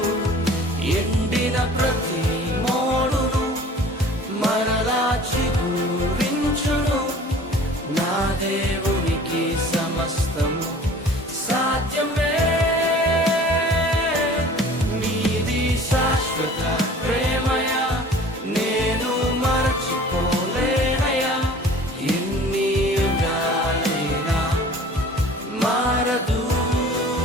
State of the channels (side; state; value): both; normal; correlation 0.46